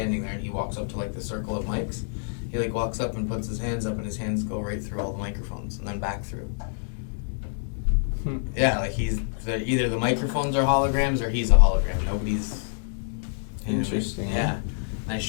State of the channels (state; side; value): silent; right; digital silence